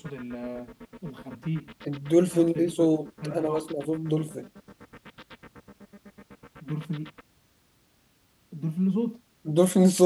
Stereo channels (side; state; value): both; identical; correlation 1.00